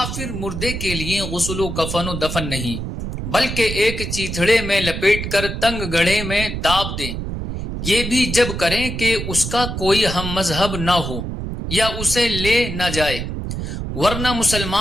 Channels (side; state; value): right; noise; rumble, 5 dB below the sound